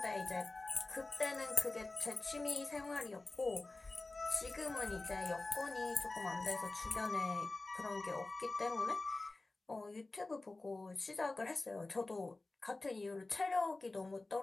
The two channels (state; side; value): quieter; right; 3.2 dB